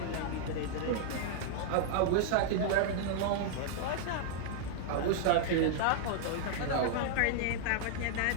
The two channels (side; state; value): both; different; correlation -0.01